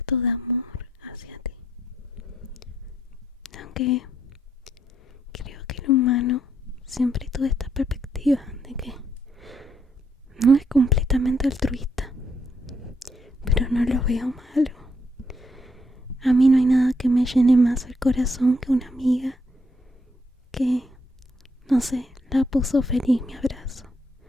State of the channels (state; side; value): normal; both; correlation 0.75